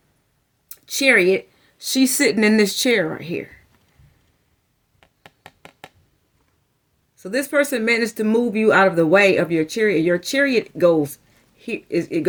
chariot. She's sitting in this chair right here. So this person managed to move you out of the way of your chariot. Your chariot goes here, it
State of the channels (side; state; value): both; identical; correlation 1.00